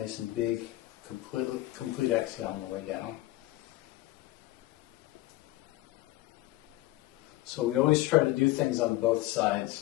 and big. Complete exhale on the way down. So we always try to do things on both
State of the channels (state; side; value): quieter; right; 17.7 dB